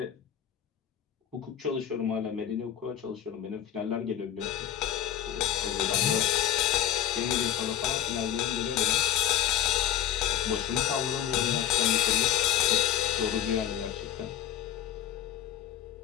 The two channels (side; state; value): right; quieter; 10.8 dB